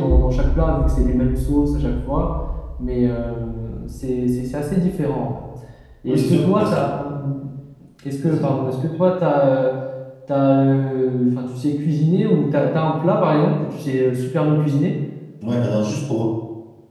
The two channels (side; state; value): both; identical; correlation 1.00